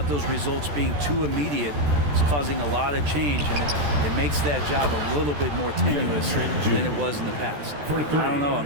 those results being too immediate. It's causing a lot of change, and it makes that job a little bit more tenuous than it was in the past. I don't know.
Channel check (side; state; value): left; late; 14 ms